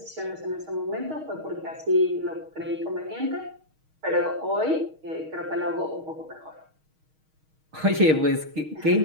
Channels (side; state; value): left; late; 6.4 ms